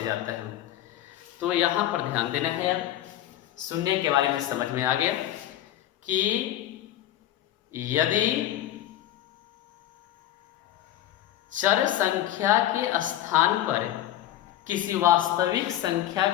जाता है। तो यहाँ पर ध्यान देना है। अब शून्य के बारे में समझ में आ गया कि यदि चर संख्या के स्थान पर किसी वास्तविक संख्या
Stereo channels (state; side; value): quieter; right; 13.0 dB